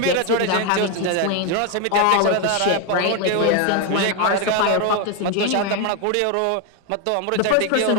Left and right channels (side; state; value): both; different; correlation 0.01